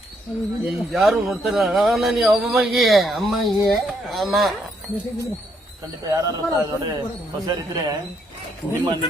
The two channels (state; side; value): normal; both; correlation 0.74